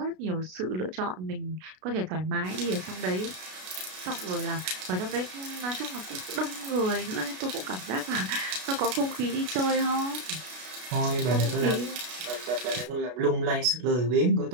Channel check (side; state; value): left; late; 33 ms